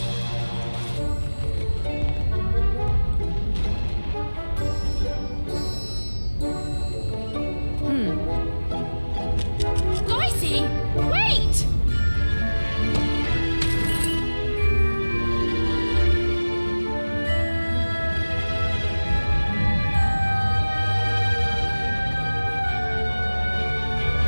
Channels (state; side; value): inverted; both; correlation -1.00